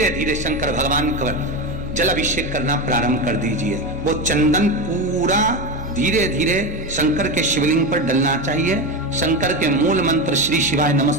धीरे शंकर भगवान का जल अभिषेक करना प्रारंभ कर दीजिए। वो चंदन पूरा धीरे धीरे शंकर के शिवलिंग पर डलना चाहिए। शंकर के मूल मंत्र श्री शिवाय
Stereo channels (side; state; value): both; normal; correlation 0.17